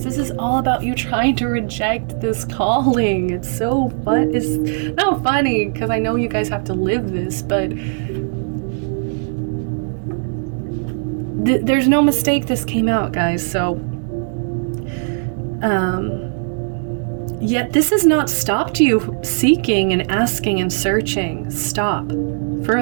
This is all about you trying to reject this calling. It's so fun. It's not funny because I know you guys have to live this, but there's no mistake this came out, guys. So, yet this has not stopped you seeking and asking and searching. Stop for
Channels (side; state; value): left; silent; digital silence